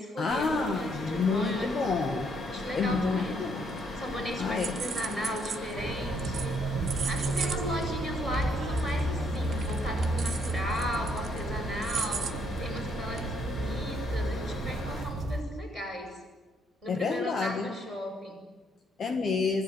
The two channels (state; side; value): normal; both; correlation 0.70